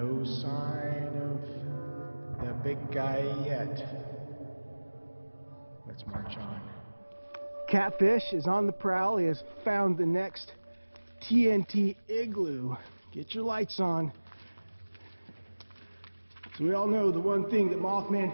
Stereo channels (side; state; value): both; inverted; correlation -1.00